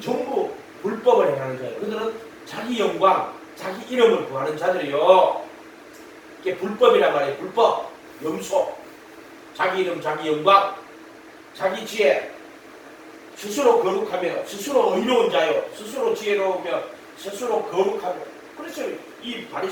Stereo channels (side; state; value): both; identical; correlation 1.00